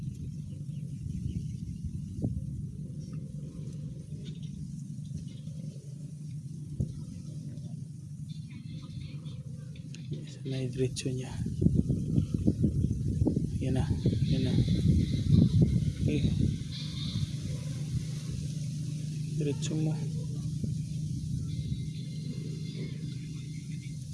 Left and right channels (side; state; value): both; identical; correlation 1.00